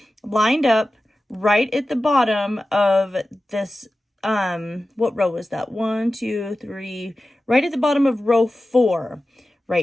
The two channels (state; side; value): normal; both; correlation 0.95